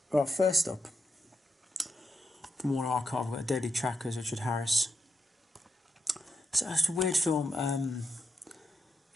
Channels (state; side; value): normal; both; correlation 0.84